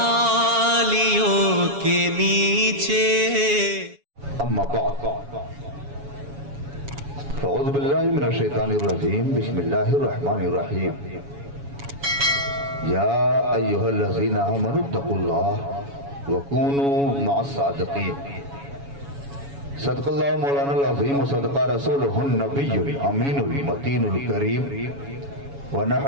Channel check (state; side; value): late; left; 7.1 ms